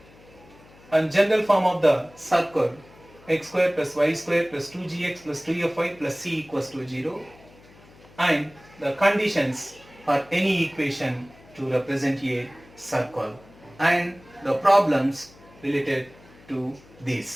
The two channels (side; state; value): left; noise; hum, 25 dB below the sound